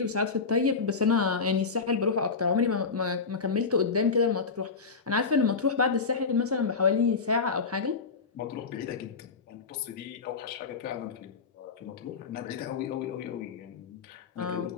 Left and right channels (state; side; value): quieter; right; 4.9 dB